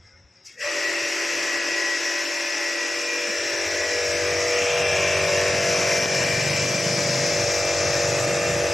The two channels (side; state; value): both; normal; correlation 0.94